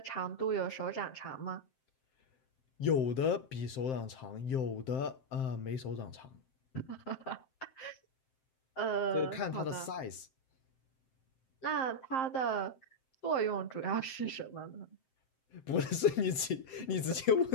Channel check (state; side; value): late; right; 7.7 ms